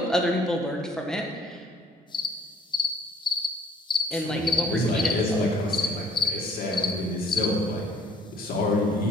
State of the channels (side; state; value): both; normal; correlation 0.59